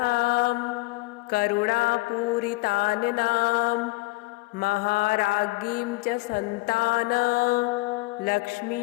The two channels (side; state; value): right; quieter; 22.7 dB